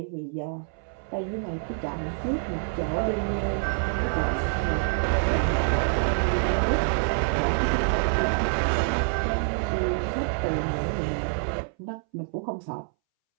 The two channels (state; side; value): silent; left; 60 dB below the other